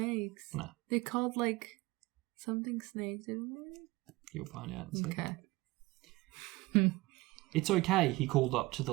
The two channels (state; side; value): quieter; left; 21.2 dB